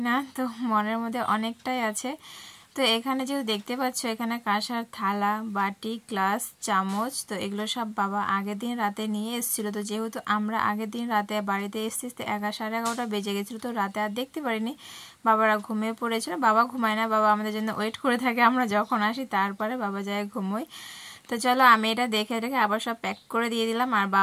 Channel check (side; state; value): both; identical; correlation 1.00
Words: না, তো মনের মধ্যে অনেকটাই আছে। তো এখানে যেহেতু দেখতে পাচ্ছ এখানে কাঁসার থালা, বাটি, গ্লাস, চামচ, তো এগুলো সব বাবা আগের দিন রাতে নিয়ে এসেছিলো। তো যেহেতু আমরা আগের দিন রাতে বাড়িতে এসেছি 11, 11:30 বেজে গেছিলো, তো রাতে আর দেখতে পারিনি, বাবারা ঘুমিয়ে পড়েছিল। বাবা ঘুমায় না, বাবা আমাদের জন্য ওয়েট করে থাকে, আমরা যখন আসি তারপরে বাবা যায় ঘুমোয়। তো চলো আমি এটা দেখে রেখে আবার সব প্যাক করে দিয়ে দিলাম। আর